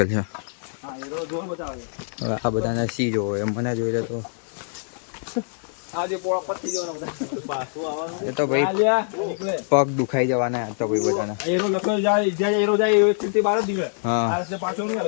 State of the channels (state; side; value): silent; right; digital silence